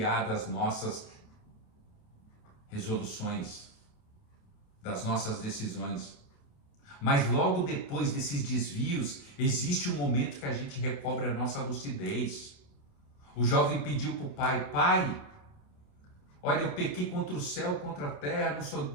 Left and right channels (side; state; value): right; late; 28 ms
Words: das nossas resoluções, das nossas decisões. Mas logo depois desses desvios, existe um momento que a gente recobra a nossa lucidez. O jovem pediu para o pai, pai, olha, eu pequei contra o céu, contra a terra, não